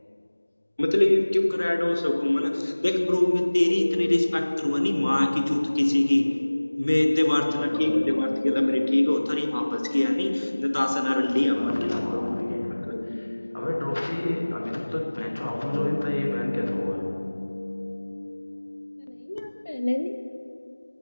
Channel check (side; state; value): both; inverted; correlation -1.00